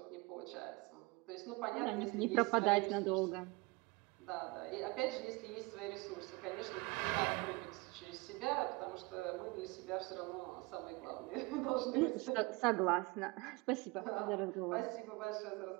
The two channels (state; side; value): quieter; left; 25.9 dB